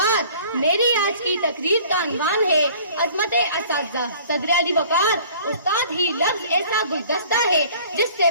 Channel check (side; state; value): both; inverted; correlation -0.50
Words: میری آج کی تقریر کا عنوان ہے عظمت اساتذہ۔ صدر علی وقار، استاد ہی لفظ ایسا گلدستہ ہے جس سے